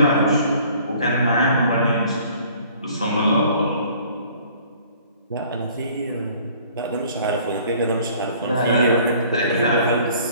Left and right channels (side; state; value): both; inverted; correlation -0.54